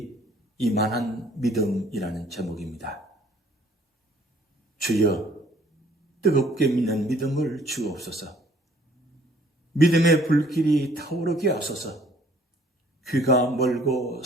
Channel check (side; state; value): both; normal; correlation 0.59